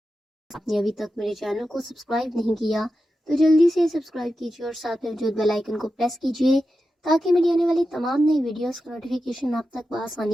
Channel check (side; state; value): both; normal; correlation 0.91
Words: آپ نے ابھی تک میرے چینل کو سبسکرائب نہیں کیا تو جلدی سے سبسکرائب کیجیے اور ساتھ میں موجود بیل آئیکن کو پریس کیجیے تاکہ میری آنے والی تمام نئی ویڈیوز کا نوٹیفیکیشن آپ تک